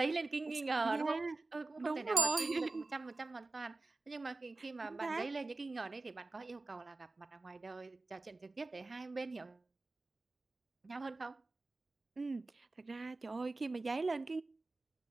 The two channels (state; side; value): quieter; left; 3.2 dB